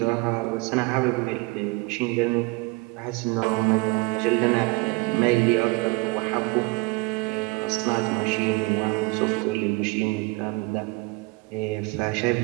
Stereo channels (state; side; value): quieter; left; 25.3 dB